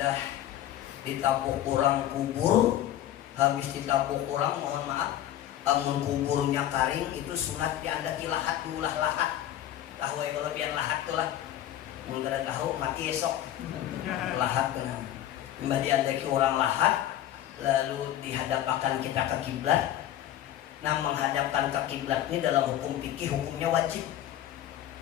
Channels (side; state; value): right; quieter; 12.2 dB